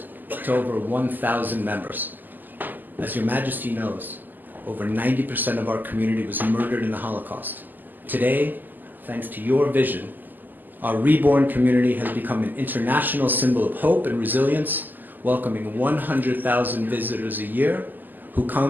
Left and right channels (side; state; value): left; late; 0.087 ms